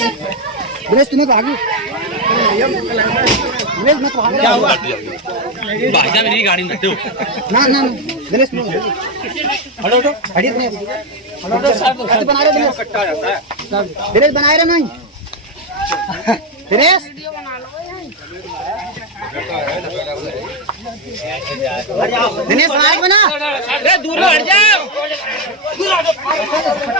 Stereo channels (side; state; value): both; normal; correlation 0.07